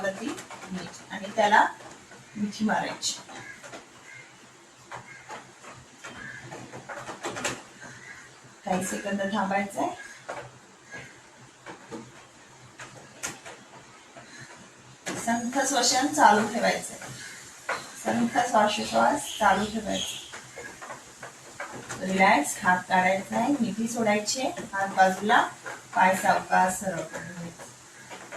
घ्यायची आणि त्याला मिठी मारायची. काही सेकंद थांबायचंय. संथ श्वसन चालू ठेवायचंय. संथ श्वासोच्छ्वास चालू ठेवायचा. रिलॅक्स. हात काढायचा आहे, मिठी सोडायची, हात बाजूला, पाय सावकाश सरळ करून घ्यायचा.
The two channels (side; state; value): both; identical; correlation 1.00